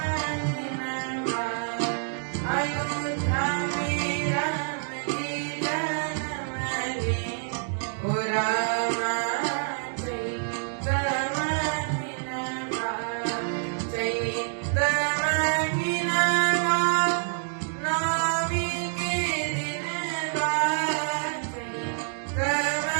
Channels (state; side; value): silent; left; digital silence